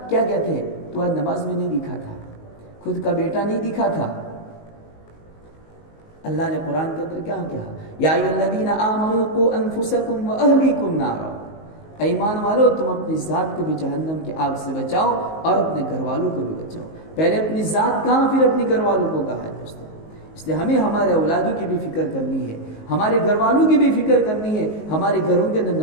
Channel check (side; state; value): right; late; 19 ms